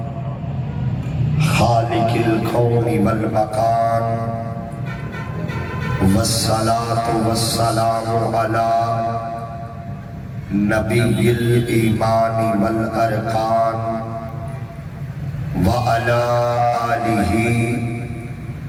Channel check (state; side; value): identical; both; correlation 1.00